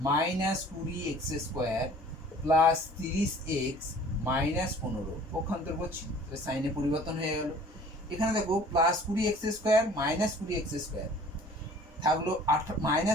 minus 20x square plus 30x minus 15, পক্ষান্তর করছি, সাইনে পরিবর্তন হয়ে গেল। এখানে দেখো plus 20x square minus 20x square থাকলো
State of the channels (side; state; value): both; normal; correlation 0.50